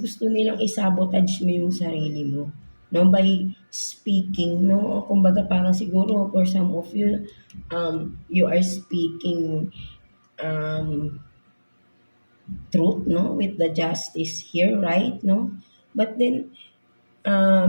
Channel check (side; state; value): both; inverted; correlation -1.00